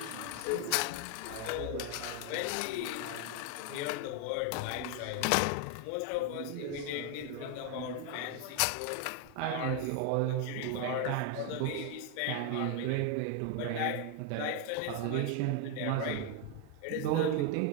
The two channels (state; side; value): different; both; correlation 0.01